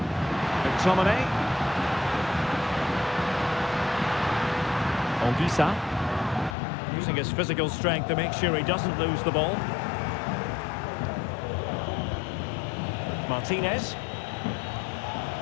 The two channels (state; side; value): drops out; right; at 6.6 s